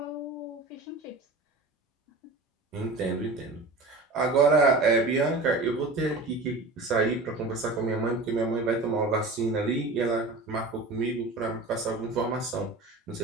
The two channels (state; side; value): quieter; left; 3.2 dB